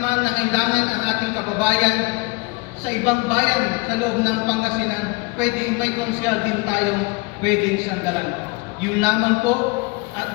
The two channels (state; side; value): quieter; right; 26.9 dB